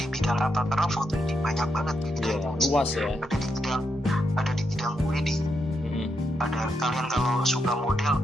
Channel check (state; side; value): normal; both; correlation 0.82